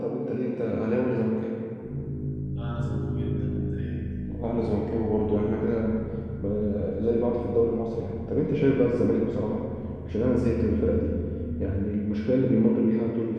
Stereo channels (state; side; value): identical; both; correlation 1.00